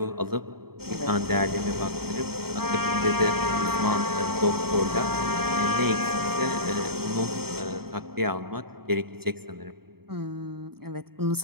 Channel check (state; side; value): late; left; 0.95 ms